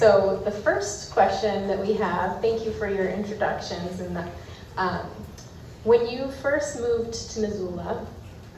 the first question that we have, thank you for your introductions, and when you first moved to Missoula,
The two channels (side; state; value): both; identical; correlation 1.00